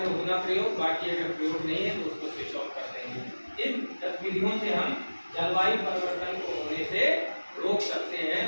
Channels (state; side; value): inverted; both; correlation -1.00